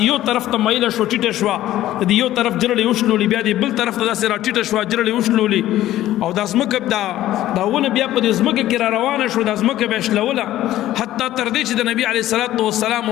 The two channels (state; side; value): quieter; right; 14.0 dB